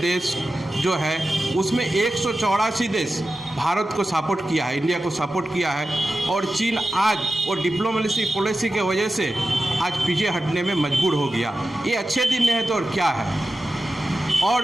जो है उसमें 184 देश भारत को सपोर्ट किया है, इंडिया को सपोर्ट किया है। और चीन आज वो डिप्लोमेसी पॉलिसी के वजह से आज पीछे हटने में मजबूर हो गया। ये अच्छे दिन है तो और क्या है।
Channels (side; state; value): both; normal; correlation 0.93